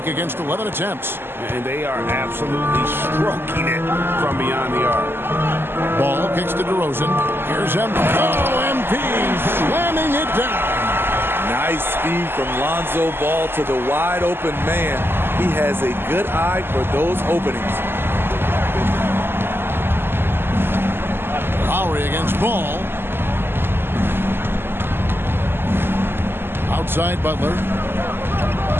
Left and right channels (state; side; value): late; left; 0.11 ms